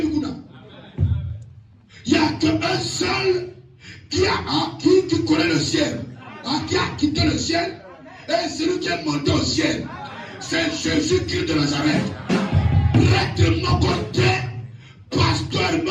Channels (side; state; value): both; identical; correlation 1.00